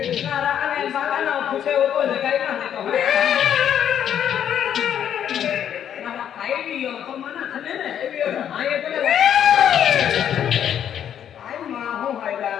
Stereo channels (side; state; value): right; quieter; 9.5 dB